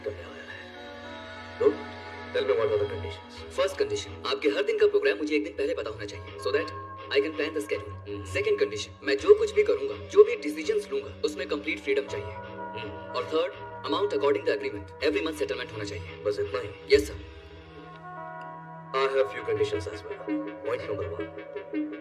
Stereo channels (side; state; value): both; identical; correlation 1.00